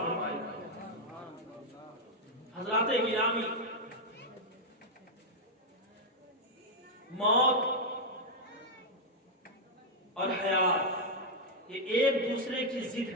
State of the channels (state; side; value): normal; both; correlation -0.02